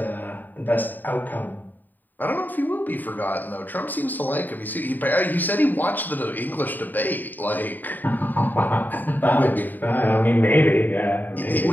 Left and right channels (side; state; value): right; late; 0.088 ms